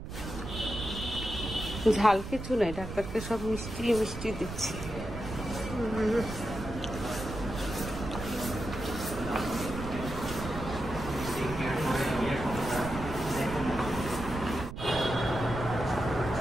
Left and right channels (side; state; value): right; noise; rumble, 8 dB below the sound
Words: ঝাল কিছু নাই, ডাক্তারকে সব মিষ্টি মিষ্টি দিচ্ছি।